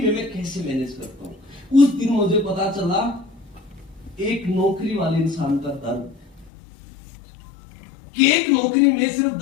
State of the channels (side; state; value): right; drops out; at 6.5 s